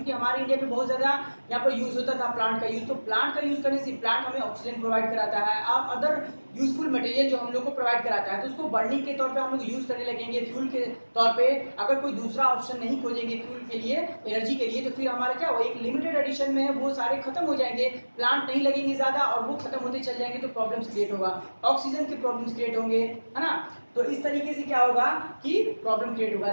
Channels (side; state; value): both; inverted; correlation -1.00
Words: हमारे इंडिया में बहुत ज्यादा यहाँ पर यूज होता था प्लांट का यूज। तो प्लांट का यूज करने से प्लांट हमें ऑक्सीजन प्रोवाइड कराता है, अब अदर यूजफुल मटेरियल जो हम लोग को प्रोवाइड कराता है, तो उसको बर्निंग के तौर पे हम लोग यूज करने लगेंगे फ्यूल के तौर पे। अगर कोई दूसरा ऑप्शन नहीं खोजेंगे फ्यूल के लिए, एनर्जी के लिए, तो फिर हमारा क्या होगा, एक लिमिटेड एडिशन में है वो सारे खत्म हो जाएंगे, प्लांट नहीं लगेंगे ज्यादा और वो खत्म होते चल जाएंगे, तो प्रॉब्लम्स क्रिएट होगा, ऑक्सीजन के प्रॉब्लम्स क्रिएट होंगे, है ना। तो इस तरीके से क्या होगा कि प्रॉब्लम क्रिएट होगा।